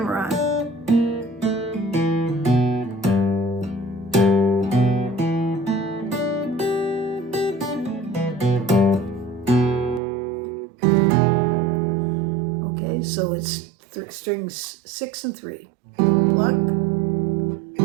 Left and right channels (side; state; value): left; drops out; at 10.0 s